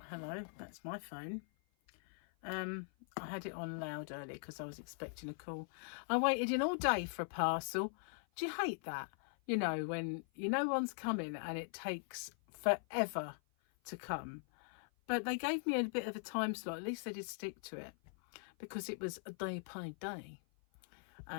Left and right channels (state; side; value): silent; right; 50 dB below the other